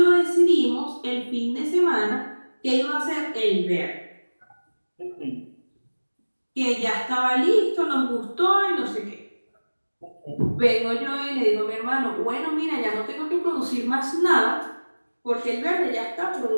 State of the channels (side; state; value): both; inverted; correlation -1.00